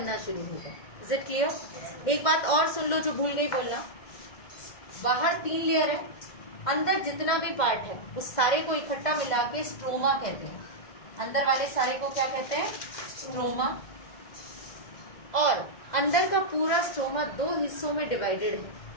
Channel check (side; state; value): right; late; 2.1 ms